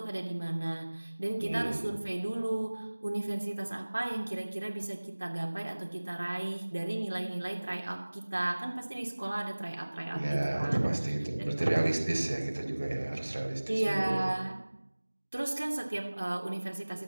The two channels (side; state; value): both; inverted; correlation -1.00